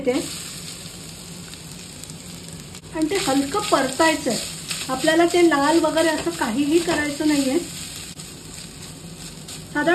आणि ते हलकं परतायचंय। आपल्याला ते लाल वगैरे असं काहीही करायचं नाहीये।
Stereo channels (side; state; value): both; identical; correlation 1.00